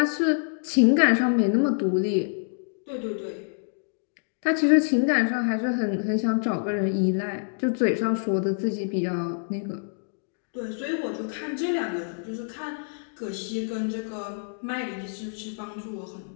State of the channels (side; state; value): right; silent; digital silence